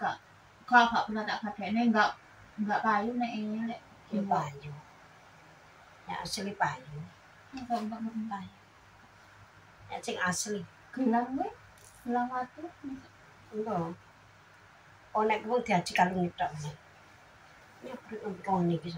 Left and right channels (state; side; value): identical; both; correlation 1.00